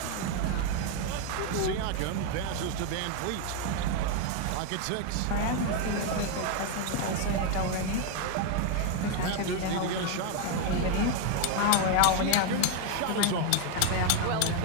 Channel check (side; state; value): both; different; correlation 0.01